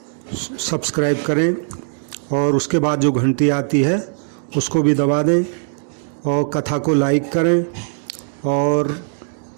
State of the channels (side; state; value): left; silent; digital silence